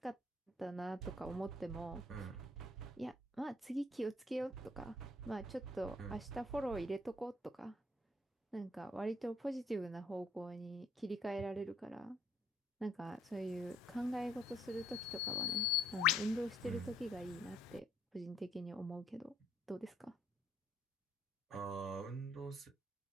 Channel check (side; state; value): both; normal; correlation 0.65